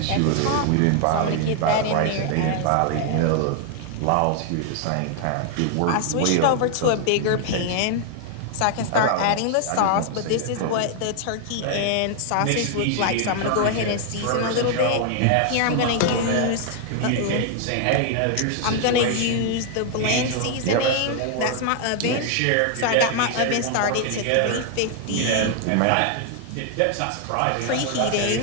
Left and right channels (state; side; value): different; both; correlation 0.00